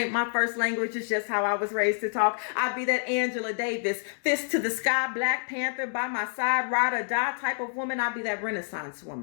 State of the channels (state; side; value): silent; right; 60 dB below the other